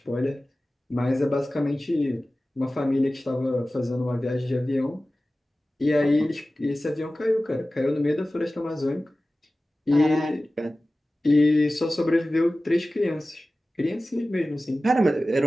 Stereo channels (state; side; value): normal; both; correlation 0.96